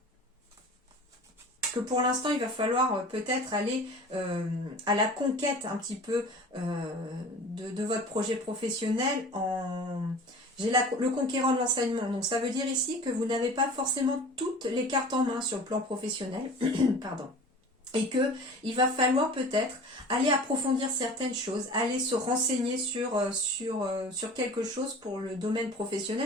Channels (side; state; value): both; normal; correlation 0.41